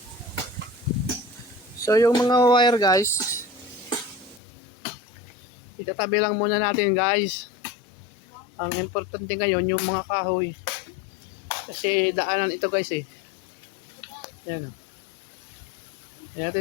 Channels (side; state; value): right; drops out; at 4.4 s